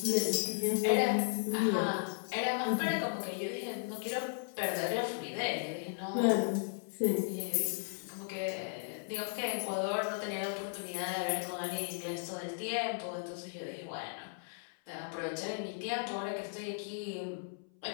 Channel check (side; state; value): right; silent; 54 dB below the other